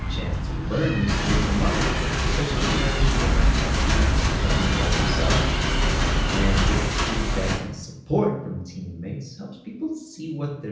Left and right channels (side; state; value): both; identical; correlation 1.00